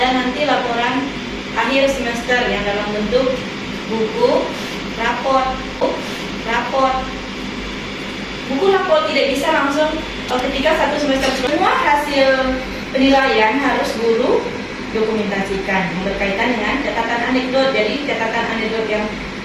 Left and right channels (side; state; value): both; identical; correlation 1.00